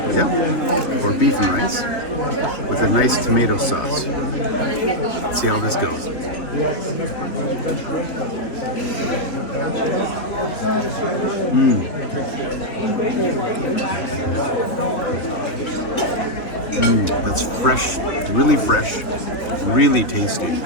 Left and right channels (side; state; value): right; late; 3.5 ms